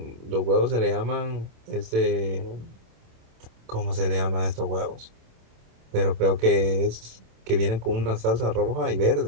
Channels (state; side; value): late; left; 27 ms